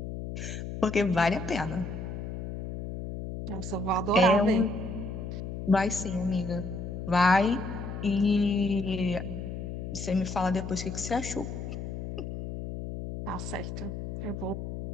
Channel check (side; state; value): left; noise; hum, 6 dB below the sound